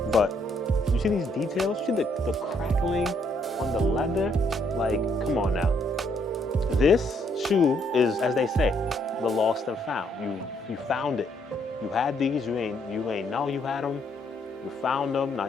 But you see these details? You see the crackling on the leather? Like, come on now. This shoe is, as they say, the lost and found. You found it. You had these, you ain't know you had them. You found them, now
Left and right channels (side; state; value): both; normal; correlation 0.71